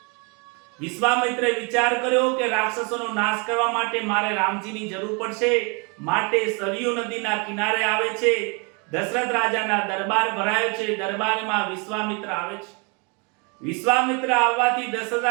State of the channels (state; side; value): quieter; left; 32.9 dB